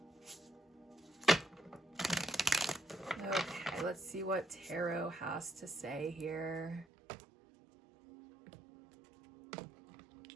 Okay, let's see what tarot has to say here.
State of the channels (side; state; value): left; drops out; at 6.9 s